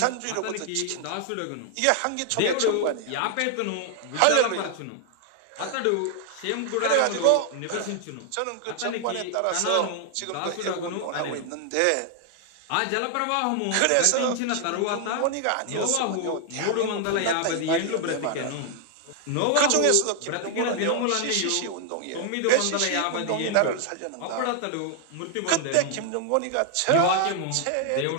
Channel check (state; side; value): different; both; correlation 0.00